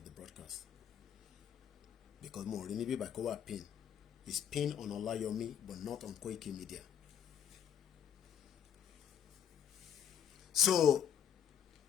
the broadcast. Because more maybe by Kowa pin. It's pinned on Olayomi, but not on Koiki Media. So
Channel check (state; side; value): quieter; right; 8.7 dB